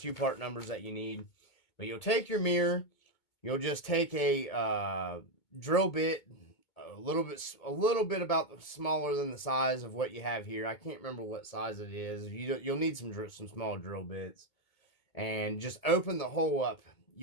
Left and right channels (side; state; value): right; late; 2.2 ms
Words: part numbers that you need. But you'll take your mirror, you'll just take a drill bit, a little bit about smaller than the size of what you have here. I can't remember what size it is. You'll need some small drill bits, and just open the hole up.